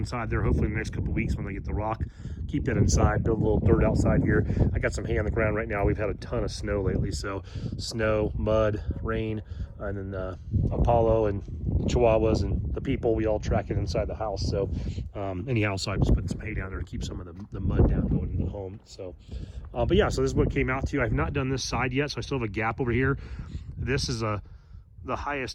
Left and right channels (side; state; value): both; identical; correlation 1.00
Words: there. Hopefully in the next couple of weeks when they get the rock, keep that inside, build a little dirt outside here. I got some hay on the ground right now. We've had a ton of snow lately, so snow, mud, rain, and then Apollo and Chihuahuas and the people, we all track it inside the house. So anyhow, so I just put some hay down there to keep some of the mud down going into the home. So but yeah, so this is what it came out to. I've not done this side yet, so I still have a gap over here. This is the